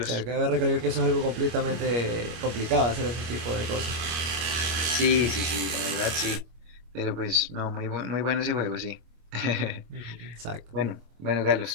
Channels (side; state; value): left; late; 25 ms